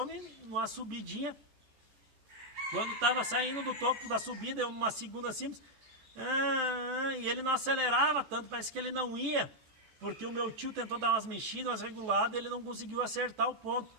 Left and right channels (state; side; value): late; left; 14 ms